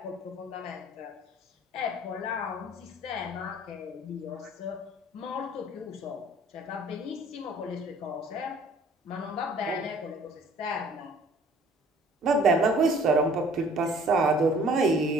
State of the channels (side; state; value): both; normal; correlation 0.54